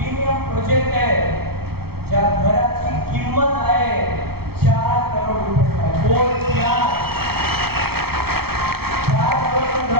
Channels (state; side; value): late; left; 0.96 ms